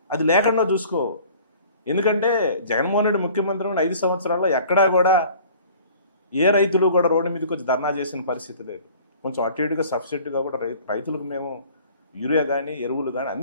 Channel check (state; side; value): inverted; both; correlation -0.49